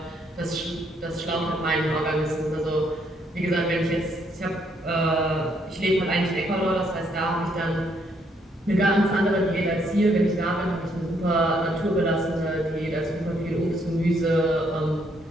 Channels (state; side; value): normal; both; correlation 0.71